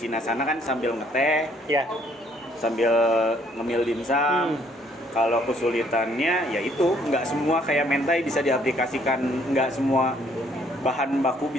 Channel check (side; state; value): both; normal; correlation 0.65